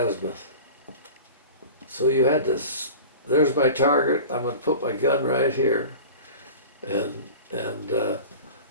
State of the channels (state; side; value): inverted; both; correlation -0.36